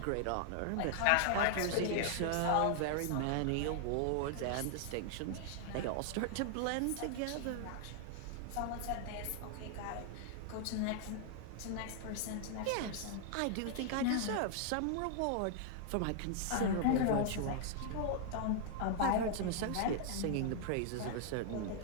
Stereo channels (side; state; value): both; different; correlation 0.00